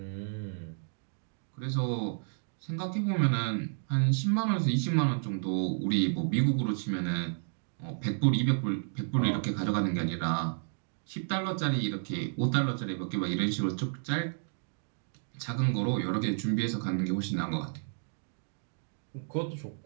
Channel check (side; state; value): left; silent; 57 dB below the other